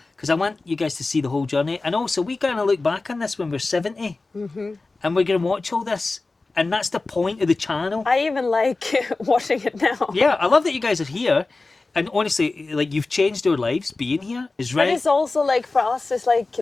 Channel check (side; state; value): right; quieter; 3.5 dB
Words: because I want you guys to see the whole journey. And also, we're gonna look back on this when we're 70, and we're gonna watch all this. And that's the point of the channel. I even like watching it now. Yeah, I love that you guys are here. And honestly, like, you've changed our lives being here. Is right. But it's also like, for us, it's like